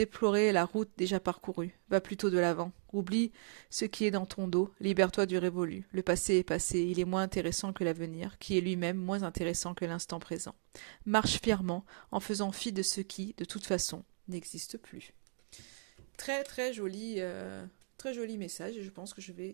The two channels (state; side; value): silent; left; 54 dB below the other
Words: la route déjà parcourue. Va plutôt de l'avant. Oublie ce qui est dans ton dos, libère-toi du révolu. Le passé est passé, il est moins intéressant que l'avenir, qui est lui-même moins intéressant que l'instant présent. Marche fièrement, en faisant fi de ce qui, de toute façon, n'existe plus. Très très joli... Très joli message et je pense que je vais